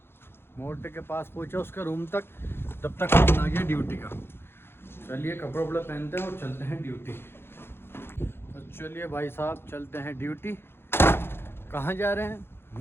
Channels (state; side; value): late; right; 0.11 ms